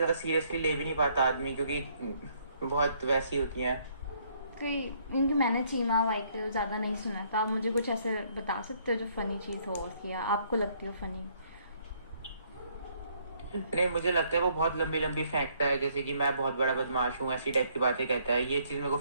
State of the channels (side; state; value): both; inverted; correlation -0.67